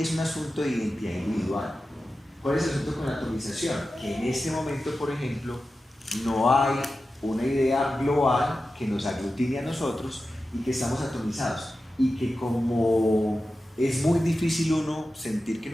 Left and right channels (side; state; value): both; normal; correlation 0.93